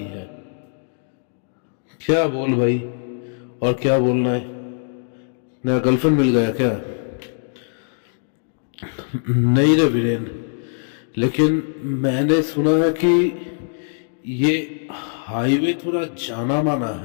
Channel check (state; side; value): silent; right; digital silence